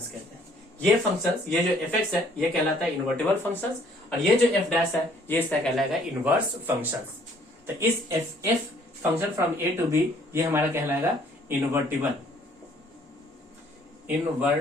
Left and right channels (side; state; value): both; normal; correlation 0.61